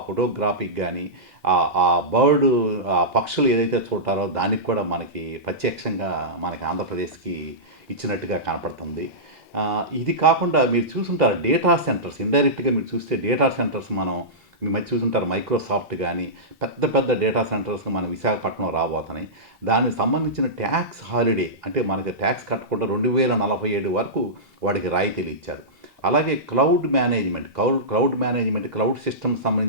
ఫోటోగ్రాఫీకి కానీ, ఆ బర్డ్ ఆ పక్షులు ఏదైతే చూడటారో దానికి కూడా మనకి ప్రత్యక్షంగా మనకి ఆంధ్రప్రదేశ్కి ఇచ్చినట్టుగా కనపడుతుంది. ఇది కాకుండా మీరు చూసుంటారు డేటా సెంటర్స్. ఇండైరెక్ట్గా మీరు చూస్తే డేటా సెంటర్స్ మీ మధ్య చూసుంటారు. మైక్రోసాఫ్ట్ కానీ పెద్ద పెద్ద డేటా సెంటర్స్ మన విశాఖపట్నం రాబోతున్నాయి. దానికి సంబంధించిన ట్యాక్స్ హాలిడే అంటే మనకి ట్యాక్స్ కట్టకుండా 2047 వరకు వాడికి రాయితీలు ఇచ్చారు. అలాగే క్లౌడ్ మేనేజ్మెంట్ క్లౌడ్ సిస్టమ్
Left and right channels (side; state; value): both; normal; correlation -0.15